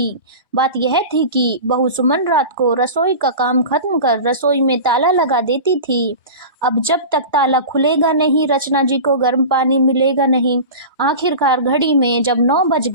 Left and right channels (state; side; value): inverted; both; correlation -0.32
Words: बात यह थी कि बहू सुमन रात को रसोई का काम खत्म कर रसोई में ताला लगा देती थी। अब जब तक ताला खुलेगा नहीं, रचना जी को गर्म पानी मिलेगा नहीं। आखिरकार घड़ी में जब 9 बज